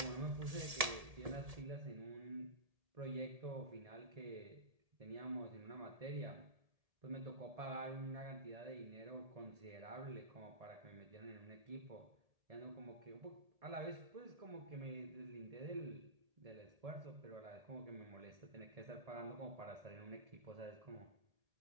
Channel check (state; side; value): late; left; 1.7 ms